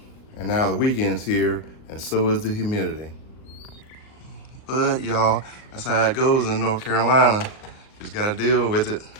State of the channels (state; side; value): late; right; 38 ms